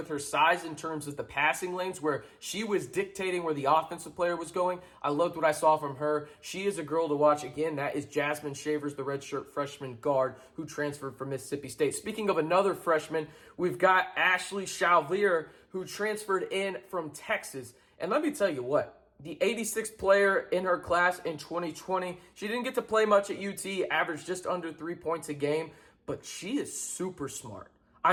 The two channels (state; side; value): identical; both; correlation 1.00